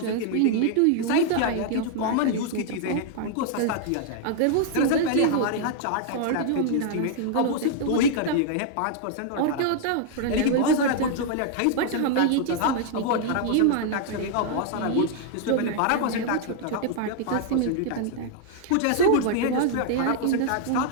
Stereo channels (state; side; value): different; both; correlation 0.00